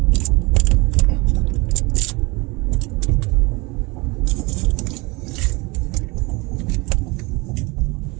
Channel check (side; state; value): left; quieter; 25.8 dB